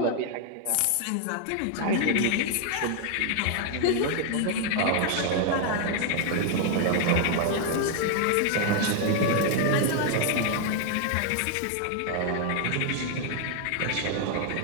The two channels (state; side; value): different; both; correlation 0.00